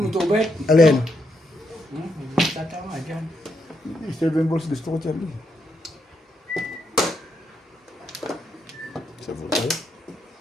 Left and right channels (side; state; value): both; normal; correlation 0.80